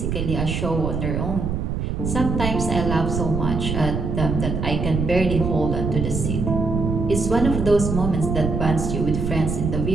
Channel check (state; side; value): noise; right; rumble, 2 dB below the sound